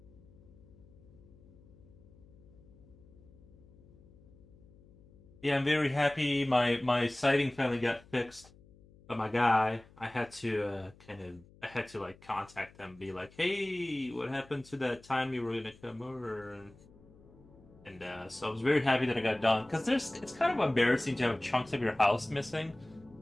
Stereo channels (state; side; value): noise; left; hum, 25 dB below the sound